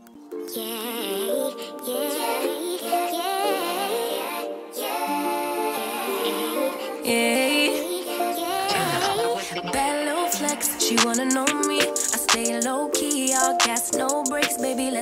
She wanna know me, I stay low key, all gas, no brakes, baby,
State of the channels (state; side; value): identical; both; correlation 1.00